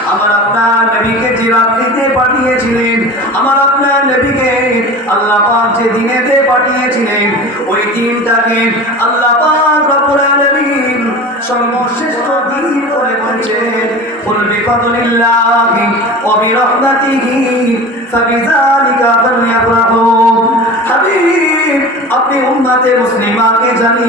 আমার আপনার নবীকে যে রাত্রিতে পাঠিয়েছিলেন, আমার আপনার নবীকে আল্লাহ পাক যে দিনেতে পাঠিয়েছিলেন, ওই দিনটাকে আল্লাহ পাক রব্বুল আলামিন সর্বশ্রেষ্ঠ দিন করে বলেছেন। কুল বিফাদলিল্লাহি ওয়া বিরহমাতিহি ফাবিযালিকা ফালইফরাহু। হাবিব, আপনি উম্মতে মুসলিমাকে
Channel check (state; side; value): normal; both; correlation 0.35